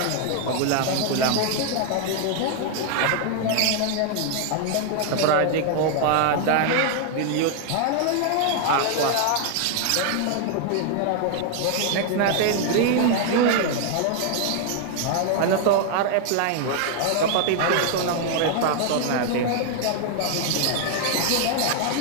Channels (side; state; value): both; different; correlation 0.00